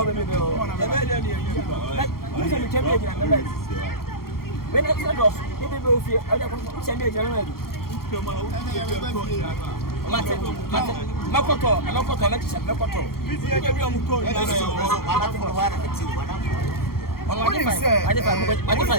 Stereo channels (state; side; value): late; right; 0.93 ms